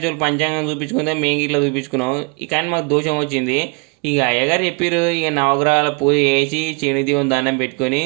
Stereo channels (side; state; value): left; quieter; 34.3 dB